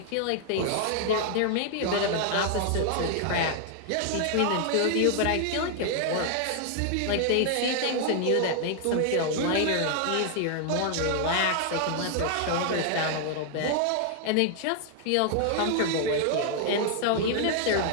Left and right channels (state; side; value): different; both; correlation 0.00